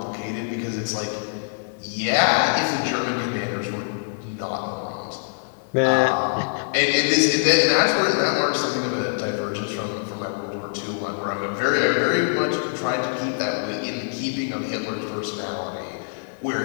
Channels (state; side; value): silent; right; digital silence